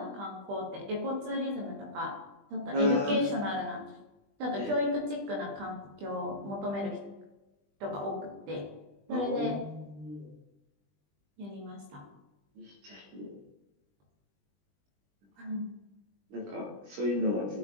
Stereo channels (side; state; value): left; late; 20 ms